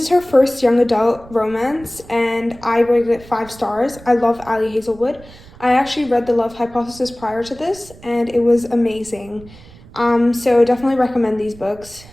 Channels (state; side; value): noise; right; rumble, 21 dB below the sound